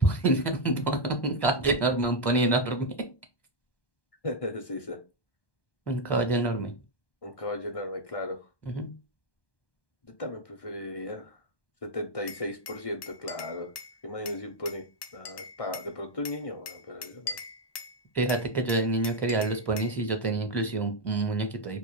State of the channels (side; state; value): right; late; 1.2 ms